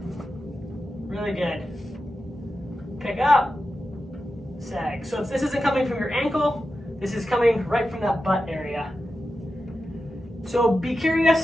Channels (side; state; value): both; normal; correlation 0.91